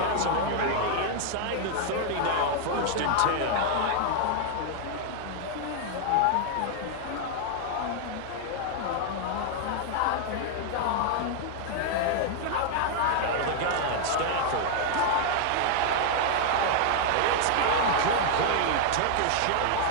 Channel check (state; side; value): different; both; correlation 0.00